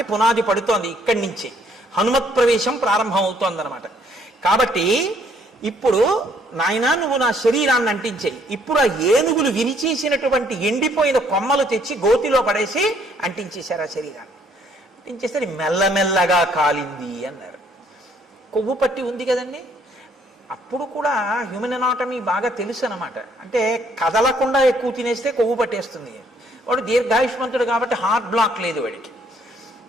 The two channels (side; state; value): both; normal; correlation 0.66